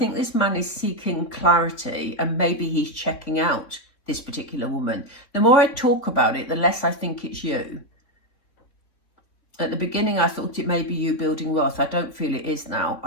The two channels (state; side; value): late; right; 3.8 ms